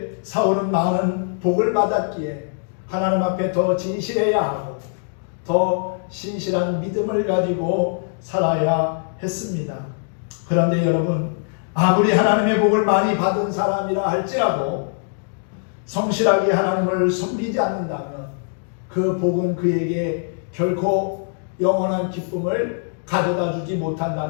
사울은 많은 복을 받았기에 하나님 앞에 더 진실해야 하고 더 신실한 믿음을 가지고 살아야 했습니다. 그런데 여러분, 아무리 하나님의 복을 많이 받은 사람이라 할지라도 성실하게 하나님을 섬기지 않는다면 그 복은 그에게 결코 영원한 기쁨을 가져다 주지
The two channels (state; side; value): silent; right; digital silence